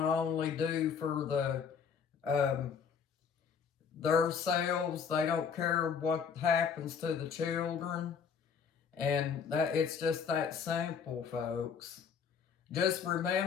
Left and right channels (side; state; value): right; quieter; 6.6 dB